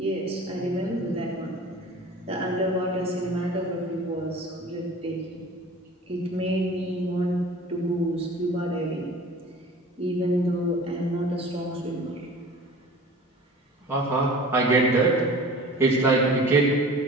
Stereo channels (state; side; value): normal; both; correlation 0.42